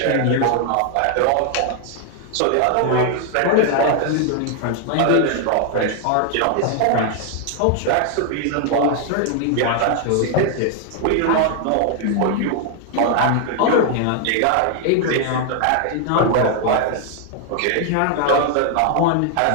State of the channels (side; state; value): both; different; correlation 0.00